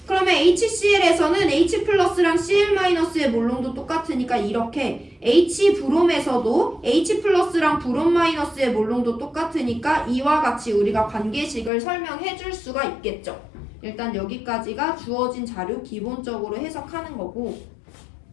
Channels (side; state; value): right; drops out; at 11.7 s